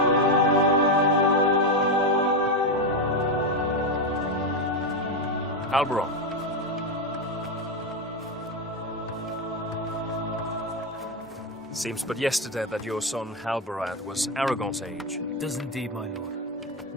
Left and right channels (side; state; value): both; normal; correlation 0.09